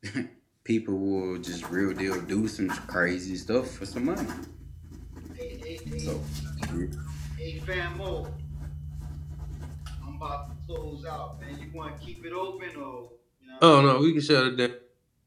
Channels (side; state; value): both; identical; correlation 1.00